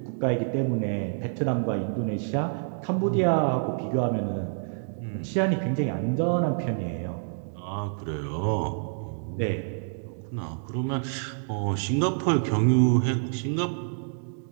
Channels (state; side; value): silent; left; digital silence